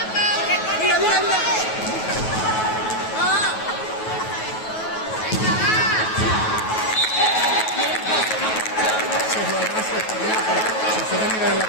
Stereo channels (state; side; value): late; right; 9.3 ms